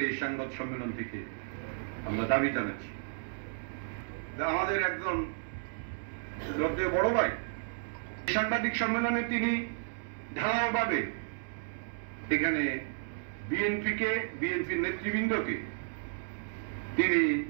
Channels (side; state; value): left; silent; digital silence